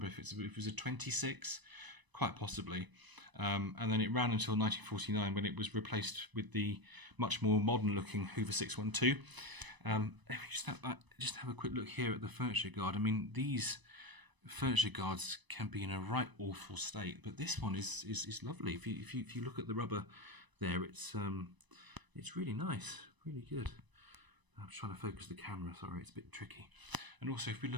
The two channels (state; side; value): late; left; 1.0 ms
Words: if it was a 26, quite possibly. And then it ran until 1949 when it was replaced with the much more modern looking Hoover 612. If we just have a quick look here at the furniture guard. I mean, these furniture guards can be in a right awful state, but this one is lovely. If you look at the rubber there, it's really nice, really good. I'm trying to focus the camera. Sorry, it's a bit tricky. And also, if we